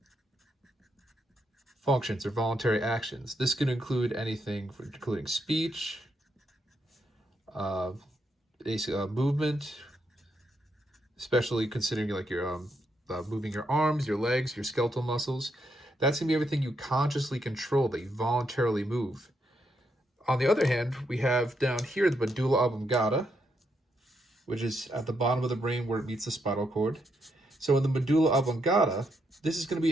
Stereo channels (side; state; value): both; normal; correlation 0.79